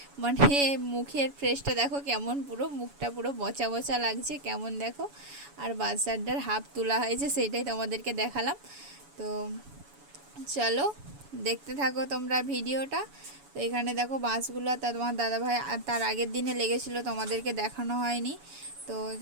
মানে মুখের ফ্রেশটা দেখো কেমন, পুরো মুখটা পুরো বচা বচা লাগছে কেমন দেখো। আর বাচ্চাটার হাফ তোলা হয়েছে, সেইটাই তোমাদেরকে দেখালাম। তো চলো দেখতে থাকো তোমরা ভিডিওটা। তো এখানে দেখো বাঁশগুলো, তোমার দাদাভাই আর তার আগের দিনে লেগেছিল, তোমাদেরকে দেখানো হয়নি। তো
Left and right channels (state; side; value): late; left; 7.1 ms